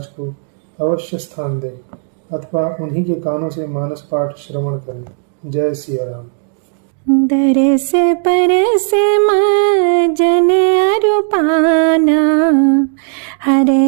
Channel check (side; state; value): left; silent; 67 dB below the other